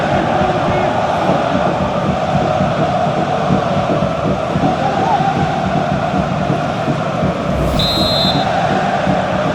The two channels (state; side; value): identical; both; correlation 1.00